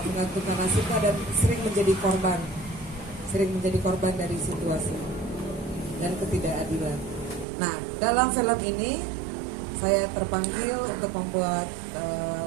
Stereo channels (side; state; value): left; drops out; at 7.5 s